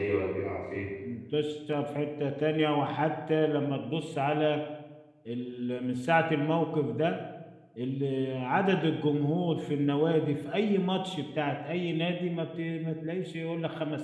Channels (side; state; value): both; identical; correlation 1.00